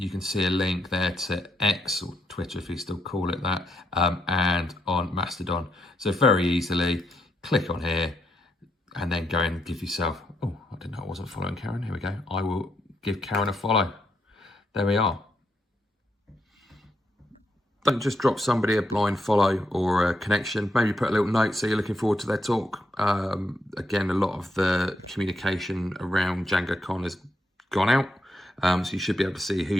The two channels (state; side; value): normal; both; correlation 0.79